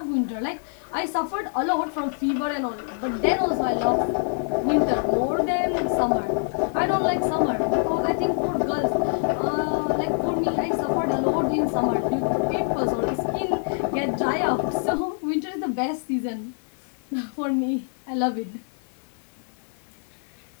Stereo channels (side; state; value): right; silent; 58 dB below the other